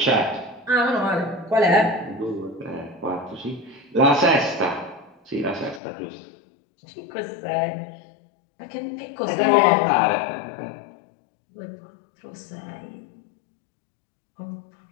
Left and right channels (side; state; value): right; drops out; at 5.8 s